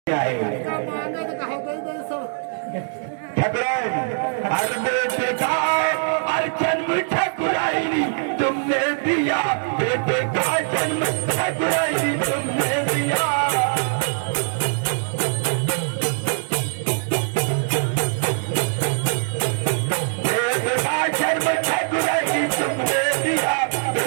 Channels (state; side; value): silent; left; digital silence